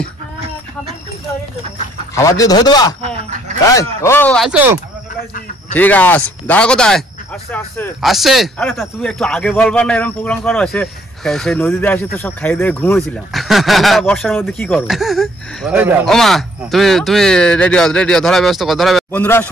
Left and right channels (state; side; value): normal; both; correlation 0.64